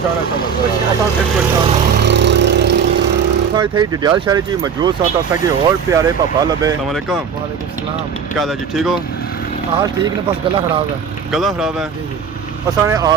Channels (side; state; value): left; quieter; 6.8 dB